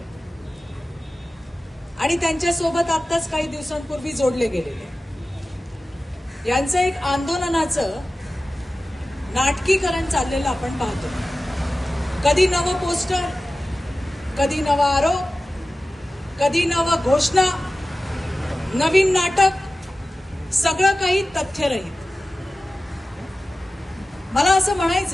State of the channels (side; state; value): both; normal; correlation 0.95